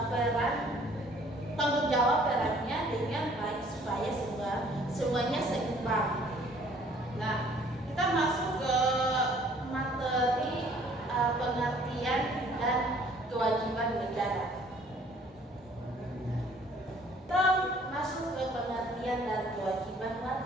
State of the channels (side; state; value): both; normal; correlation 0.57